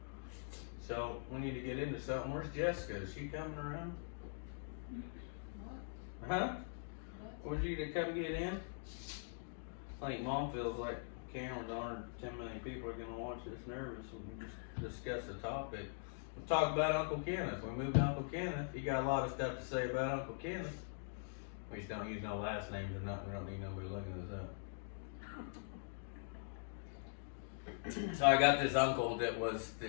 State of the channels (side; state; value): right; silent; digital silence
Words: so we need to get into something. Where's Jessica? Is she coming around? What? Huh? Would you to come get in? I think Mom feels like cameras on her. 10 million people are going to watch this nervous when we just discuss the topic. We'll talk about Uncle Kenneth. We moved to Uncle Kenneth. He got a lot of stuff to say about Uncle Kenneth. We just don't use no last names or nothing. We don't need nobody looking this up. So I got this uncle that